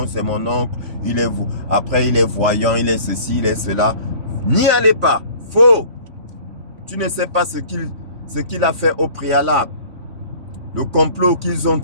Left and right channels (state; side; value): late; left; 3.5 ms